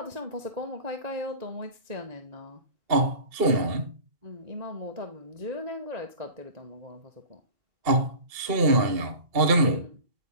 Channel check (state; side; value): late; left; 2.7 ms